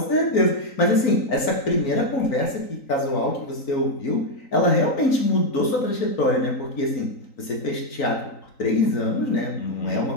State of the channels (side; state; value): right; late; 3.9 ms